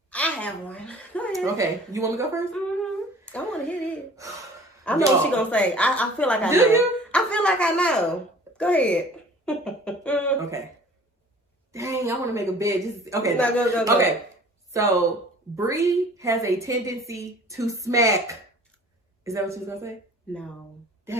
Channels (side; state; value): both; normal; correlation 0.48